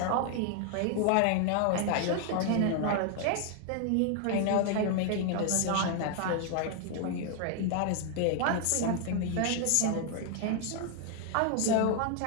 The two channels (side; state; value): both; different; correlation 0.00